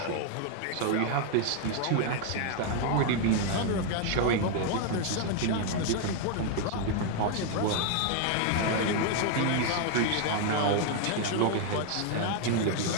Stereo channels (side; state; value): both; different; correlation 0.00